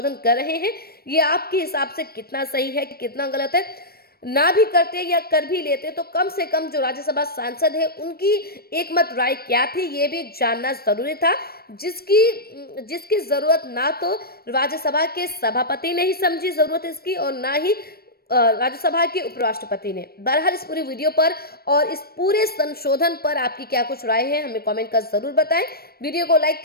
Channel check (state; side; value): late; right; 0.45 ms